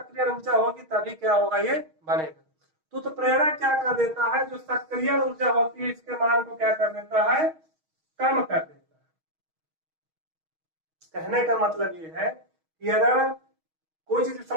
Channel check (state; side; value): late; left; 6.3 ms